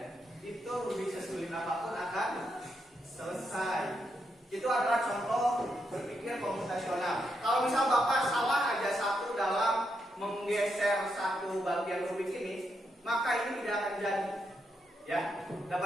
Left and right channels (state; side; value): normal; both; correlation 0.81